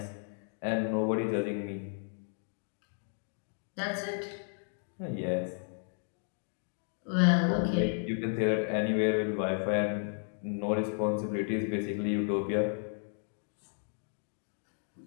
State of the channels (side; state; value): right; silent; 55 dB below the other